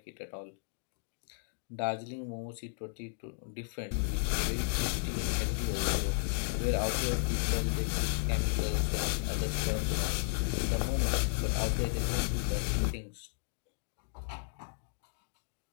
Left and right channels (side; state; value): right; silent; digital silence